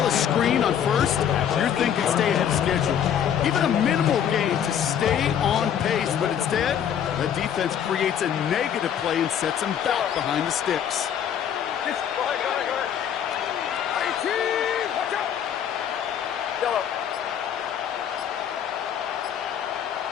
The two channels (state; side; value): quieter; right; 9.1 dB